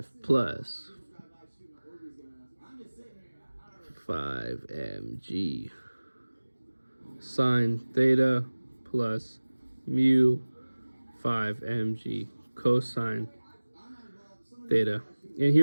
plus 5 mg sine theta plus mu 5 mg cosine theta. And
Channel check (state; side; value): inverted; both; correlation -1.00